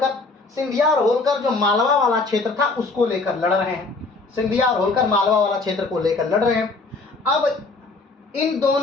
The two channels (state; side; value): quieter; right; 3.7 dB